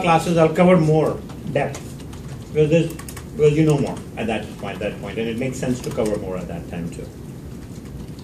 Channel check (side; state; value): both; identical; correlation 1.00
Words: classes, I'll cover more depth. Because you know more at that point, and it makes sense to cover more at that time too.